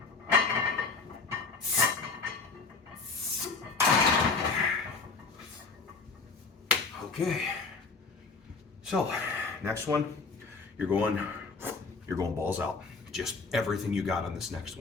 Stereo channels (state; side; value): quieter; right; 4.3 dB